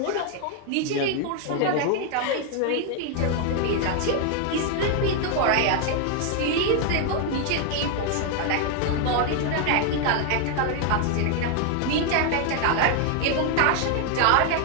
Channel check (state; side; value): different; both; correlation 0.00